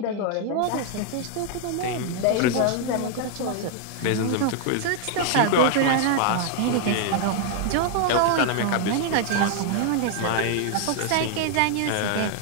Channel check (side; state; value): both; different; correlation 0.00